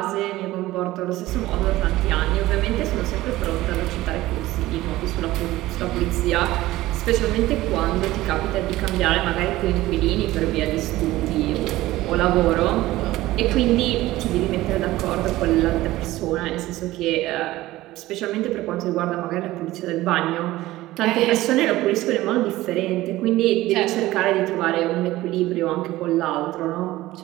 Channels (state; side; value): quieter; left; 17.0 dB